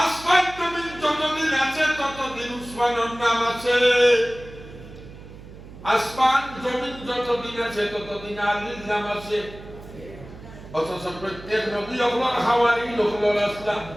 আসমান জমিন যতদিন আছে ততদিন উসমানের নাম আছে আসমান জমিন যতদিন আছে ততদিন আলীর নাম আছে অথচ প্রত্যেক নবী হলেন হাওয়ারি হলেন আসলাম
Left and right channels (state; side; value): noise; right; hum, 16 dB below the sound